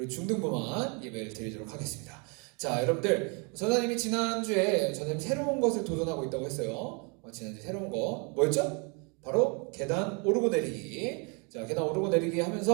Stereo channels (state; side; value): quieter; left; 33.7 dB